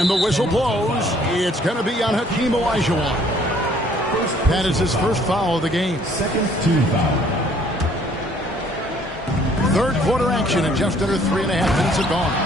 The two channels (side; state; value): both; normal; correlation 0.60